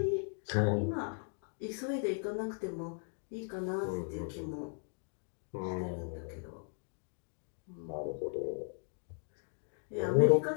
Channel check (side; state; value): right; silent; 53 dB below the other